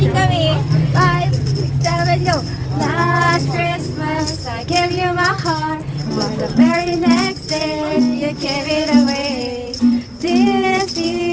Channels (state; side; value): identical; both; correlation 1.00